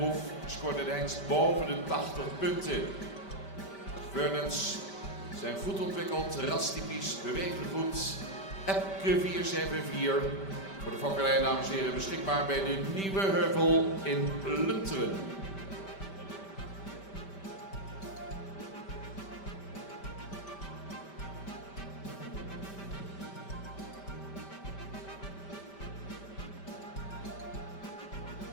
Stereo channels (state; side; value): late; right; 5.1 ms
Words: scoorde de hengst boven de 80 punten. Vernons zijn goed ontwikkeld, rastypisch, bewegen goed. Epke 474. Voor de fokkerij, dames en heren, beschikbaar bij de Nieuwe Heuvel in Lunteren.